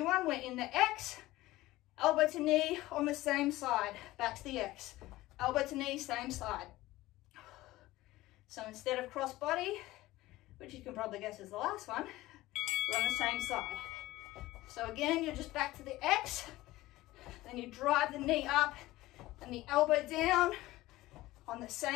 one. We're in the X, elbow to knee on the same side, back to the X, elbow to knee, same side. So instead of cross body, which you can probably guess is the last one, we're on the same side. So again, you're just back to the X, then you drive the knee up and the elbow down on the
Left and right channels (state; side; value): quieter; right; 17.7 dB